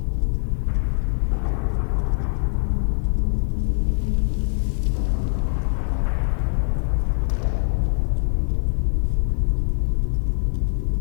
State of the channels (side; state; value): right; silent; 64 dB below the other